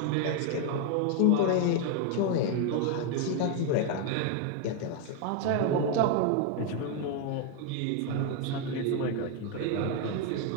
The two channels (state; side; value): different; both; correlation 0.01